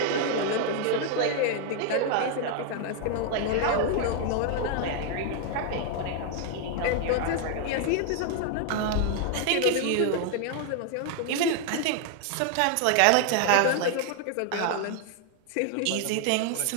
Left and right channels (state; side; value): different; both; correlation 0.00